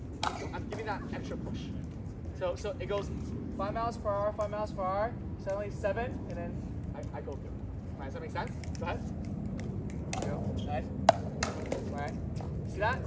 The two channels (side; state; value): both; identical; correlation 1.00